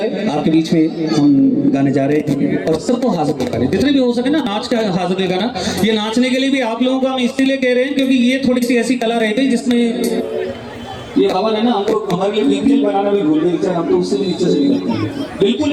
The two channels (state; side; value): identical; both; correlation 1.00